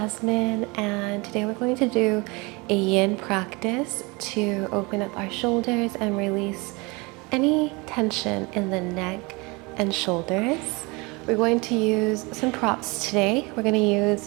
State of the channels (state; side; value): quieter; left; 26.3 dB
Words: and today we're going to do a yin practice to open up our shoulders and release any tension in the neck and shoulders. We're going to use some props today. We're going to